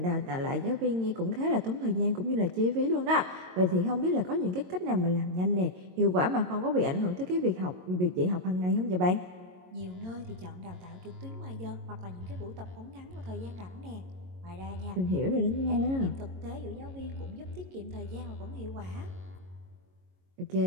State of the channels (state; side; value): late; left; 22 ms